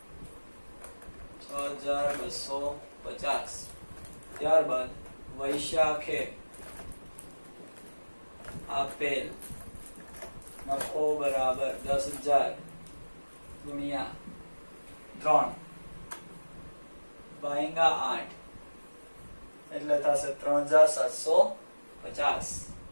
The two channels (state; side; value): inverted; both; correlation -1.00